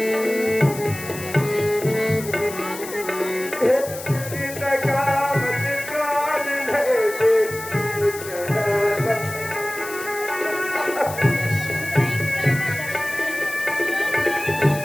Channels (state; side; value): noise; left; hiss, 12 dB below the sound